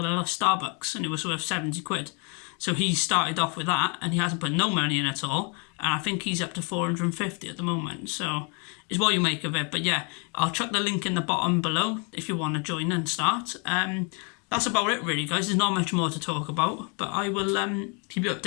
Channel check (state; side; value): quieter; right; 35.5 dB